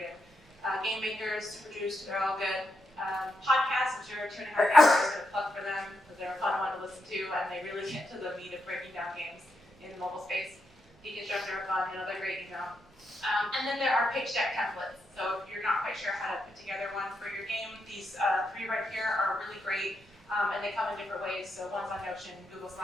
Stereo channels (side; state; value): both; normal; correlation 0.83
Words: Game makers, super juiced, they're all good. Podcasts, I'm sure 2.5 hours is going to plug for them, because they're a fun one to listen to, and they really get to the meat of breaking down games in the mobile space. Deconstructor are fun, another great email. And then there are pitch deck templates. So if you're not quite sure how to put together one for your game, these 3 right here are really great, and they come in different ways. So one's on Notion, Google